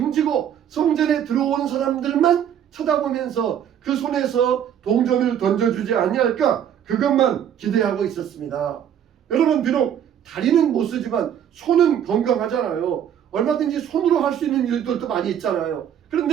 성전에 들어오는 사람들만 쳐다보면서 그 손에서 동전을 던져주지 아니할까 그것만 기대하고 있었습니다. 여러분, 비록 다리는 못 쓰지만 손은 건강하잖아요. 얼마든지 손으로 할 수 있는 일들도 많이 있잖아요.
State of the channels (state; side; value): quieter; left; 9.4 dB